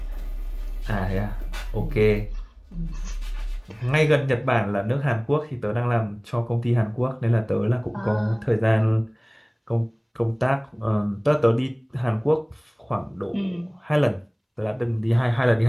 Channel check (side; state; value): both; identical; correlation 1.00